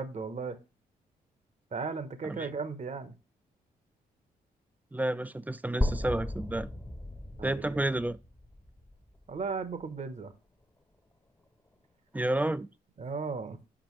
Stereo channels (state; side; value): normal; both; correlation 0.81